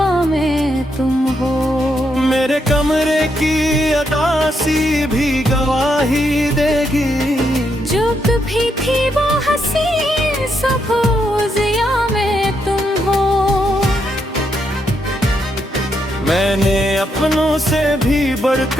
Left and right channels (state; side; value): normal; both; correlation 0.79